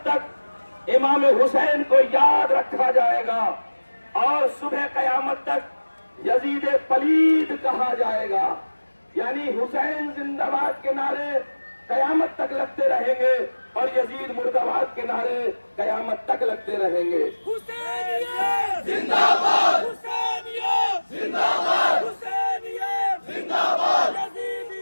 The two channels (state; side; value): inverted; both; correlation -1.00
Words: تک امام حسین کو یاد رکھا جائے گا اور صبح قیامت تک یزید پلید کہا جائے گا، یعنی حسین زندہ باد کے نعرے قیامت تک لگتے رہیں گے اور یزید مردہ باد کے نعرے قیامت تک لگتے رہیں گے۔ حسینیت زندہ باد، حسینیت زندہ باد، حسینیت زندہ باد،